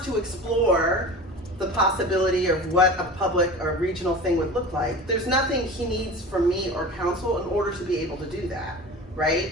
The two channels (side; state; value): both; normal; correlation 0.35